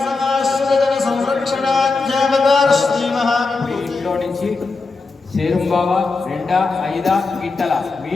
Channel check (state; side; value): quieter; right; 4.0 dB